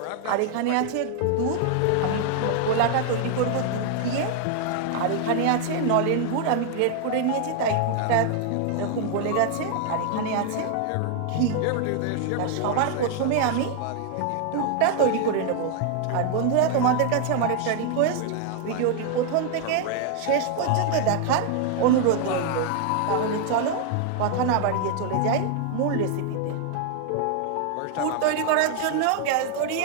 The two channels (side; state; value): both; different; correlation 0.00